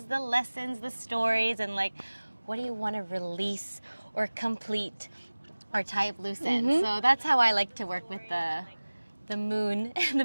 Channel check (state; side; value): inverted; both; correlation -1.00